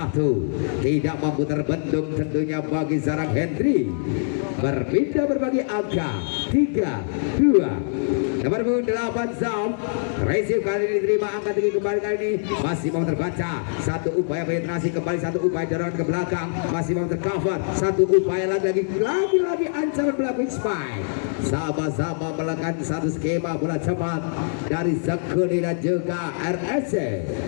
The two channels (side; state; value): right; silent; digital silence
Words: Tidak mampu terbendung tentunya bagi Zarang Hendry. Berpindah berbagi angka 3-2. Nomor 8 Zam. Receive kali ini diterima angka tinggi kembali kali ini. Masih mau terbaca. Satu upaya penetrasi kembali. Satu upaya dorongan ke belakang. Masih mau tercover. Satu upaya lagi ancaman belakang spike. Sama-sama melakukan satu skema bola cepat dari Sekuni dan juga RSC.